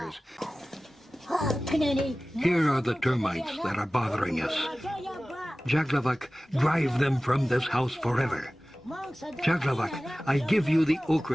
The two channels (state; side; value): normal; both; correlation 0.97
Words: Here are the termites that are bothering us. Jaglavak, drive them from this house forever. Jaglavak, I give you the